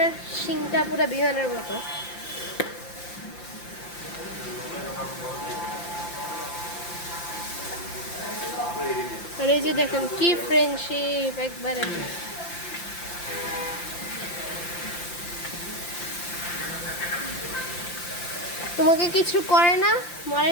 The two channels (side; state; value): right; late; 5.8 ms